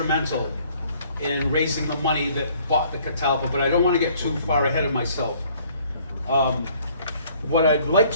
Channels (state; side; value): inverted; both; correlation -0.59